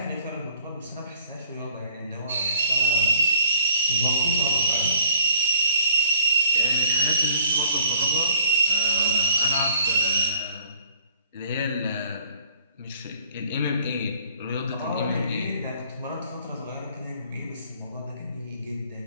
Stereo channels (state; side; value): inverted; both; correlation -0.56